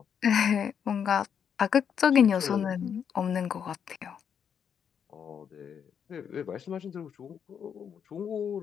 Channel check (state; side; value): quieter; right; 7.7 dB